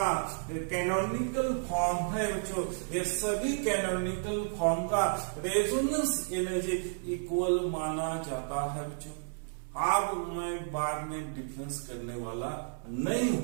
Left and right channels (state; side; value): silent; left; 56 dB below the other